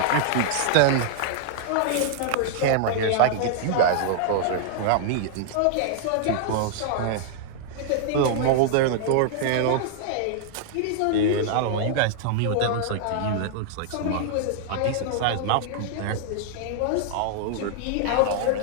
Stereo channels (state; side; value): different; both; correlation -0.01